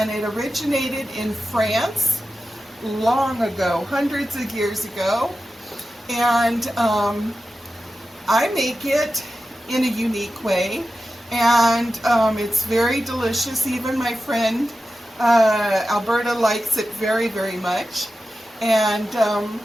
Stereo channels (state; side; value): normal; both; correlation 0.93